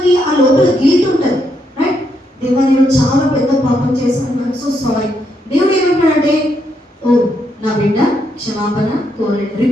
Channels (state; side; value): normal; both; correlation 0.78